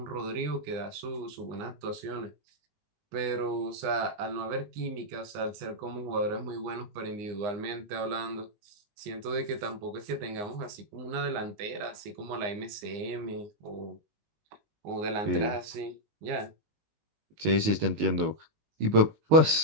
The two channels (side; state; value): left; late; 19 ms